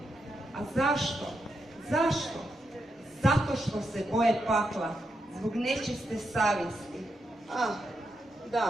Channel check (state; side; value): normal; both; correlation 0.83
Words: A zašto? Zašto? Zato što se boje pakla, zbog nečiste savjesti.